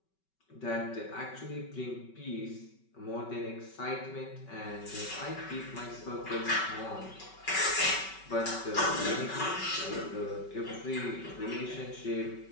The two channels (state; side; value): late; right; 5.3 ms